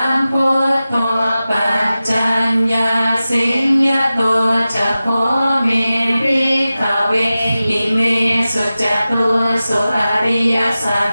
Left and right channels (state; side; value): inverted; both; correlation -0.95